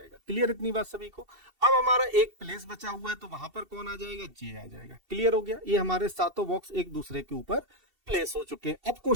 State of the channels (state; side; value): late; left; 2.7 ms